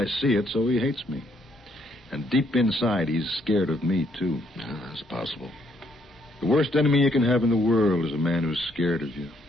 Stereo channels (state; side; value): normal; both; correlation 0.71